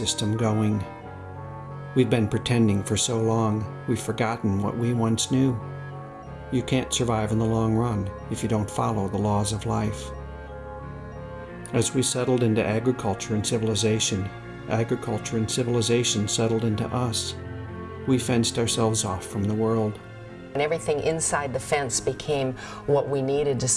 going. We've been pretending for so long, we've forgotten what we once knew. You can't survive in the long run if you don't follow the laws of life. As we settled into agriculture and civilization settled into us. We fenced ourselves off from the world. And everything inside the fence became what we needed to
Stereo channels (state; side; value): identical; both; correlation 1.00